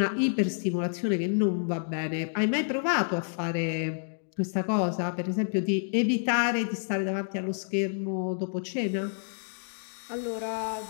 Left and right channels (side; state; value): right; silent; digital silence